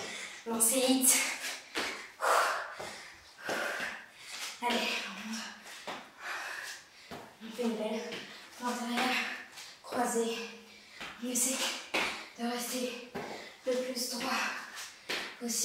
Lancer hit. Allez, on fait une belle pointe arrière, croisée. On essaie de rester le plus droit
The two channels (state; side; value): identical; both; correlation 1.00